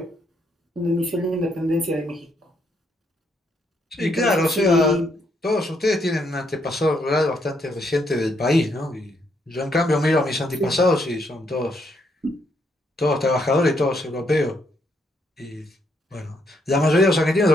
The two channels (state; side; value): normal; both; correlation 0.74